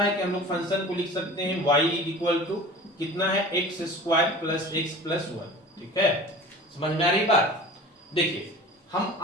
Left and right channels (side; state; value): both; normal; correlation 0.40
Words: है कि हम लोग फंक्शन को लिख सकते हैं y इक्वल टू कितना है, x square plus x plus 1, ठीक है। समझ में आ रही बात? देखिए हम,